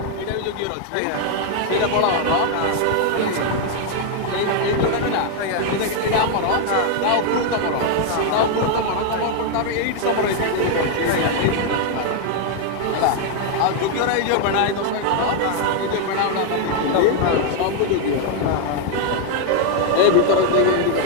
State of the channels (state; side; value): different; both; correlation 0.00